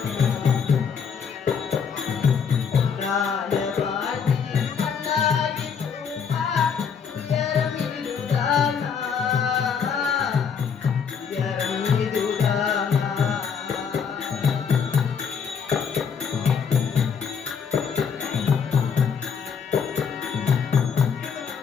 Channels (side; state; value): right; quieter; 6.6 dB